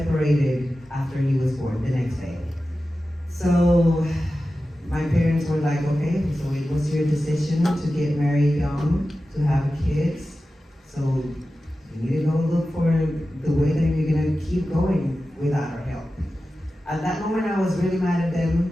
after he was born the next day. So my parents were like, okay, so it was your decision to get married young, to have kids. So you need to go look for the way that you're gonna keep going without our help. At that moment, I was really mad at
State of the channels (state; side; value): normal; both; correlation 0.94